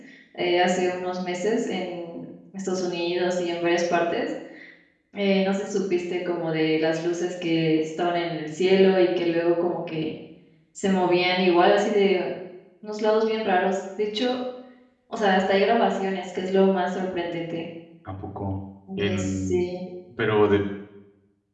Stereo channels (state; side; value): identical; both; correlation 1.00